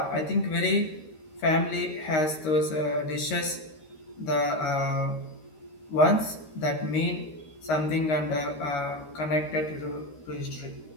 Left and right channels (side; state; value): right; late; 13 ms